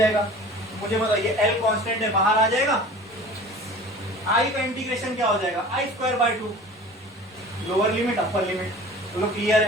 मुझे बताइए L कांस्टेंट है, बाहर आ जाएगा। I का इंटीग्रेशन क्या हो जाएगा? I²/2, lower limit upper limit, तो लोग क्लियर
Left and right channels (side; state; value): both; normal; correlation 0.41